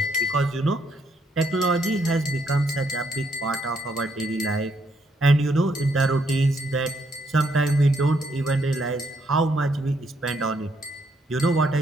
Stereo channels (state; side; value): normal; both; correlation 0.74